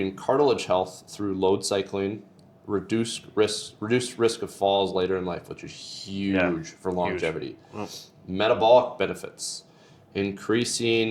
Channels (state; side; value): identical; both; correlation 1.00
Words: cartilage health through load cycling, reduced risk of falls later in life, which is huge for longevity. Huge. Metabolic benefits: